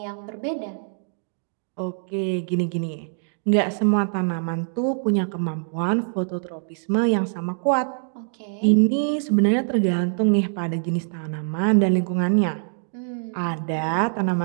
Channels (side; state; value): left; silent; digital silence